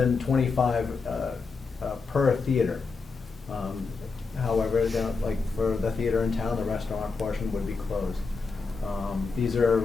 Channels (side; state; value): right; quieter; 4.5 dB